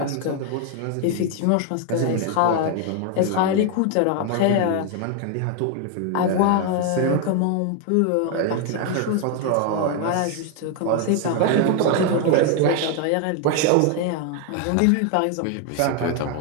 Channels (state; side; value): different; both; correlation 0.01